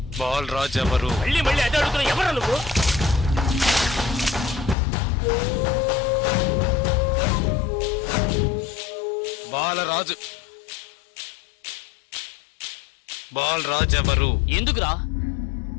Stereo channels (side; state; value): right; drops out; at 4.8 s